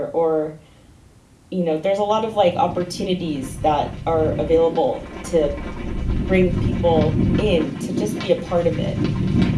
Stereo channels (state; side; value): identical; both; correlation 1.00